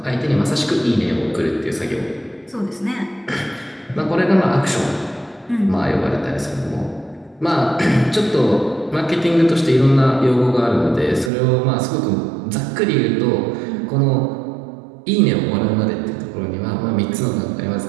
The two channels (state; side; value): drops out; left; at 11.3 s